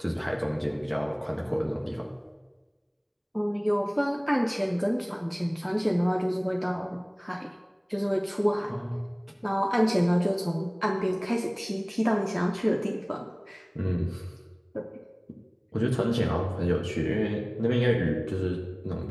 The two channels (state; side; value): identical; both; correlation 1.00